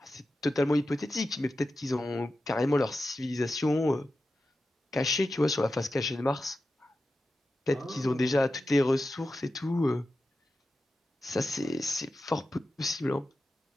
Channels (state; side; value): normal; both; correlation 0.92